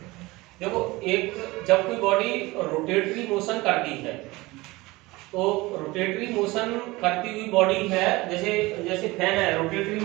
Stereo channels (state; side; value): quieter; left; 21.3 dB